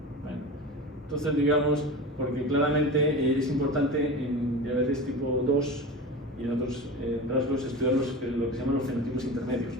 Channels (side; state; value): both; normal; correlation 0.29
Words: bueno. Entonces, digamos, porque claramente es importante en diabetes tipo 2 y en otros rasgos estudiar lo que se llaman los fenotipos intermedios,